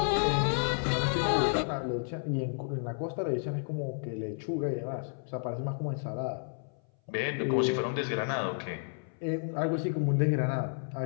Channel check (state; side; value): silent; right; 57 dB below the other